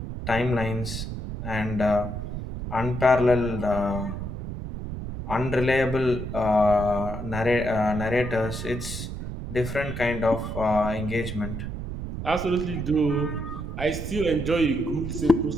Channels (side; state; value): right; noise; rumble, 6 dB below the sound